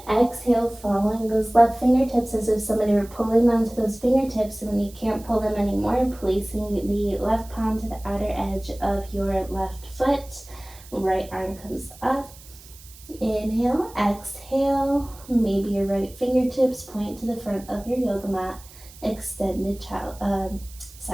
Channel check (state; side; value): noise; right; hiss, 21 dB below the sound